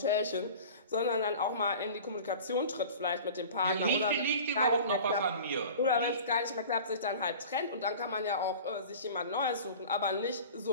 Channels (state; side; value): inverted; both; correlation -0.40